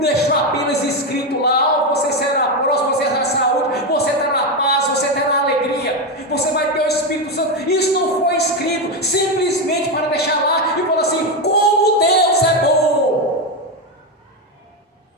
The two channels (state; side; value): normal; both; correlation 0.10